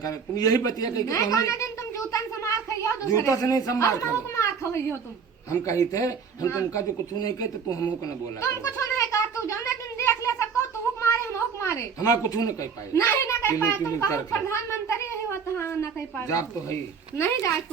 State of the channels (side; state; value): left; quieter; 6.2 dB